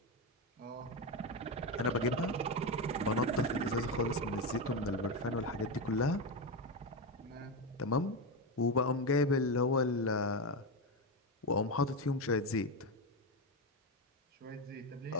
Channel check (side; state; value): both; normal; correlation 0.12